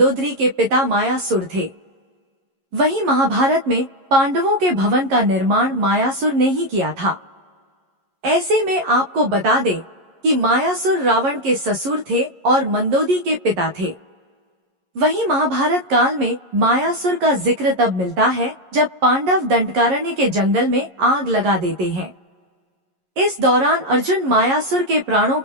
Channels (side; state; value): left; late; 11 ms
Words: के पिता मायासुर थे। वहीं महाभारत में पांडवों के भवन का निर्माण मायासुर ने ही किया था। ऐसे में आपको बता दें कि मायासुर रावण के ससुर थे और मंदोदरी के पिता थे। वहीं महाभारत काल में मायासुर का जिक्र तब मिलता है जब पांडव दंडकारण्य के जंगल में आग लगा देते हैं। इस दौरान अर्जुन मायासुर के प्राणों